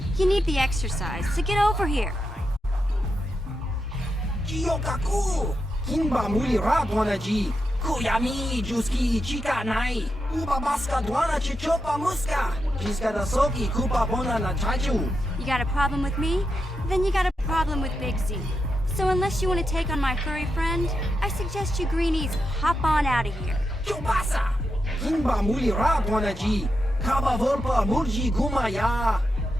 you need the exercise, so get over here. Jiyokaku, Kimba Mulira Dwanaji, Kuyami, Juski, Chika Nai, Uba Baska Dwana Chichopa Muska, Jiska da Soki, Kupa Bona na Chachu. You got a problem with me? Then you got a problem with Big Z. So unless you want to take on my furry friend, I suggest you greenies hop on out of here. Chubasa, Kimba Mulira Dwanaji, Kaba Volpa Murji Gumaya.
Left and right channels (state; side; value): normal; both; correlation 0.86